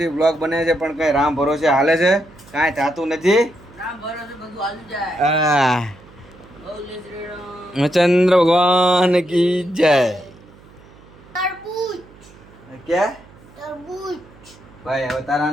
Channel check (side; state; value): right; noise; hum, 24 dB below the sound